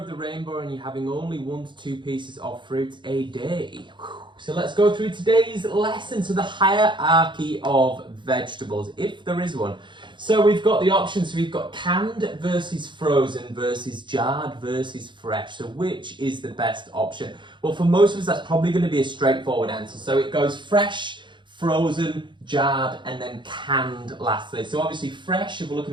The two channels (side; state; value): left; late; 0.23 ms